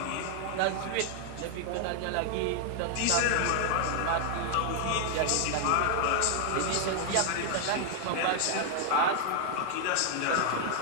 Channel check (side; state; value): both; different; correlation 0.00